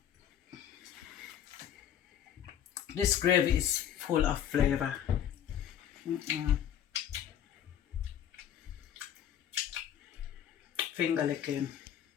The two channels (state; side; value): quieter; right; 10.0 dB